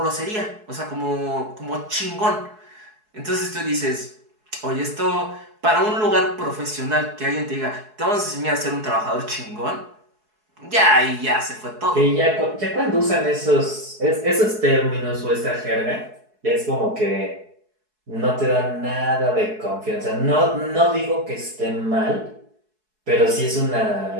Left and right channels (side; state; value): left; late; 4.7 ms